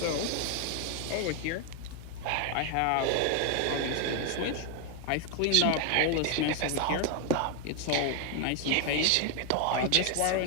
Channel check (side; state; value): both; different; correlation 0.01